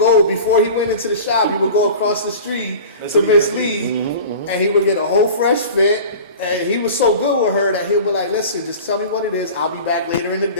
before he went into the shop, he would go across the street to Miss Lee and he would get a whole fresh fit. And he was so good with her that he'll be like, "Listen, just tell me what it is. I'll be back later in the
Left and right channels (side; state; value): both; inverted; correlation -0.38